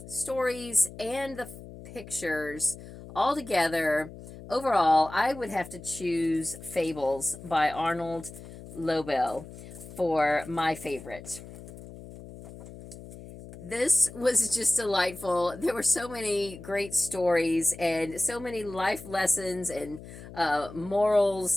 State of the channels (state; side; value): noise; left; hum, 15 dB below the sound